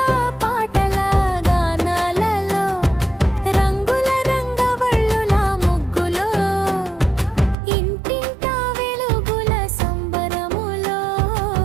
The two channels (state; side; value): drops out; left; at 7.6 s